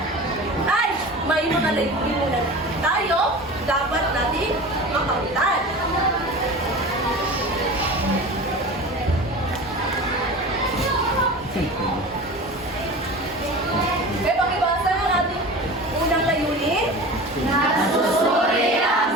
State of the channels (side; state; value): both; normal; correlation 0.34